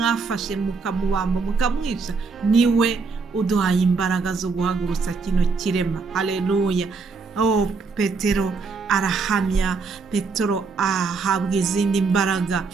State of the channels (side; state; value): left; quieter; 4.6 dB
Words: mukamubamba mukamwica niwe uduhaye imbaraga zo guhagurutsa kino kirema. Haleluya! Petero arahamya, Petero ahabwa izindi mbaraga.